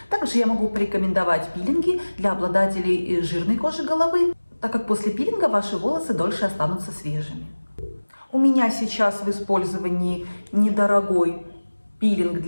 Также я могу порекомендовать пилинги для обладателей жирной кожи головы, так как после пилинга ваши волосы дольше останутся свежими. У меня сейчас в использовании недорогой пилинг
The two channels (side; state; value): both; inverted; correlation -1.00